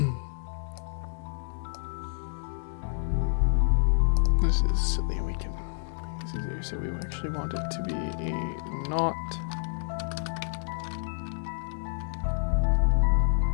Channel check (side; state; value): right; silent; digital silence